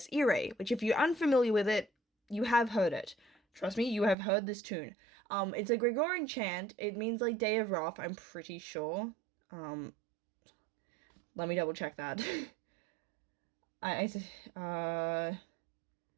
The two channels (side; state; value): left; drops out; at 4.2 s